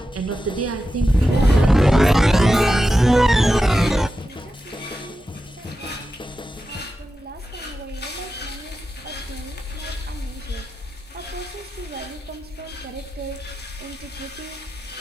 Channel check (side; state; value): both; normal; correlation 0.91